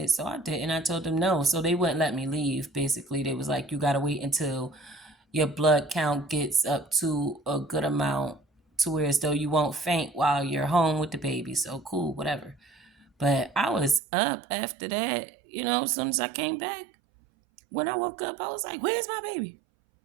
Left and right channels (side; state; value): left; drops out; at 14.0 s